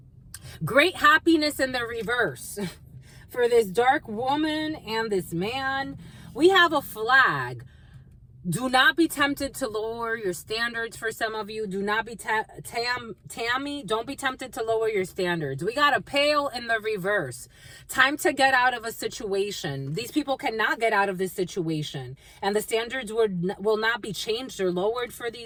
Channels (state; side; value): identical; both; correlation 1.00